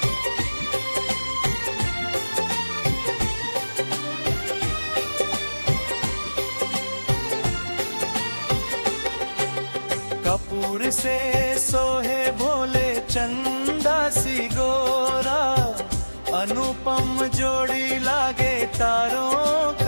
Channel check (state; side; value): inverted; both; correlation -1.00